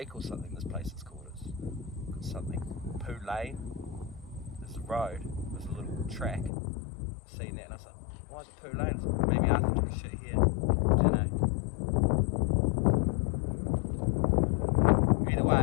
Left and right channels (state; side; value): drops out; right; at 6.5 s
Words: or something this place is called. It's something Poo Lane. There's a road, there's a little track. Seen that and I was like, why is it Poo Lane? Like, maybe Arthur took a shit here. I don't know. Either